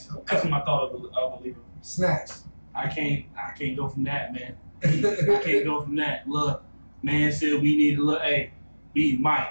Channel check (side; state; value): both; inverted; correlation -1.00